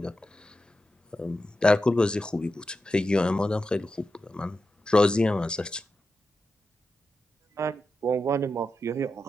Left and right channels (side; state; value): both; normal; correlation 0.90